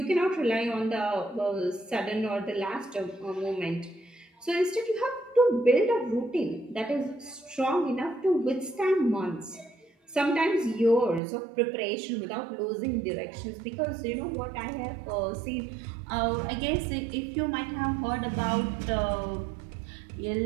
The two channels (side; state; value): left; drops out; at 11.2 s